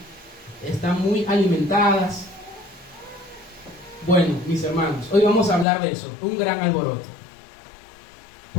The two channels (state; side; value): drops out; right; at 5.7 s